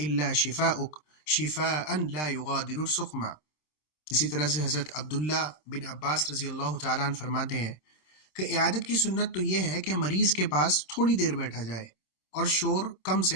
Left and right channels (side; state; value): right; late; 26 ms